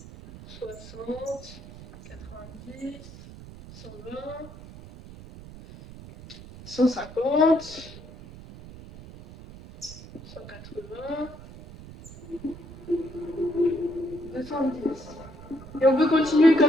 60, 90, 120, 150, 180, 210. Et on peut continuer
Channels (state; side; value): noise; right; rumble, 16 dB below the sound